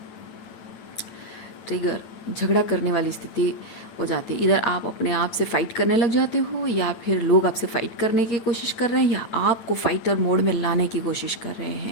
ट्रिगर झगड़ा करने वाली स्थिति हो जाती है। इधर आप अपने आप से फाइट करने लग जाते हो, या फिर लोग आपसे फाइट करने की कोशिश कर रहे हैं, या आपको फाइटर मोड में लाने की कोशिश कर रहे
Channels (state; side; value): late; right; 9.0 ms